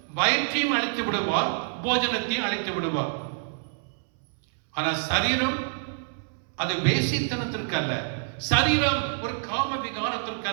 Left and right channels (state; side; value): silent; left; 60 dB below the other